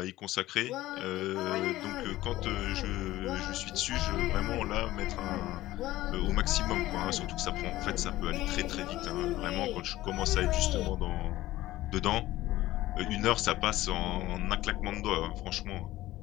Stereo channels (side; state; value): right; quieter; 16.2 dB